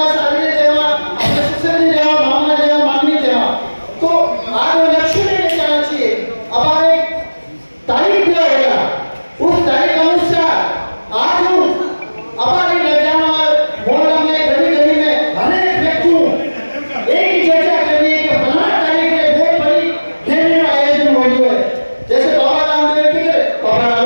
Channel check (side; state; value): both; inverted; correlation -1.00